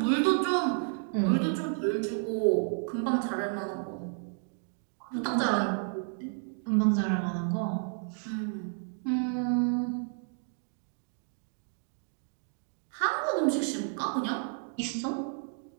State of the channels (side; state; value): left; silent; 57 dB below the other